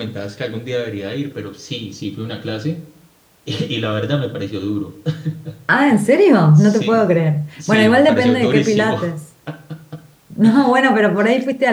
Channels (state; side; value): identical; both; correlation 1.00